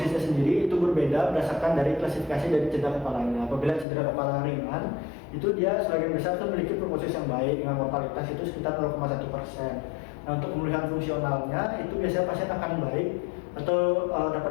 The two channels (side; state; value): right; drops out; at 3.9 s